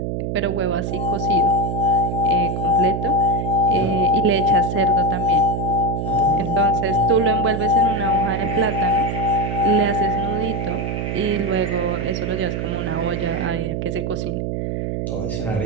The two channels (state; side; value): noise; right; hum, 2 dB below the sound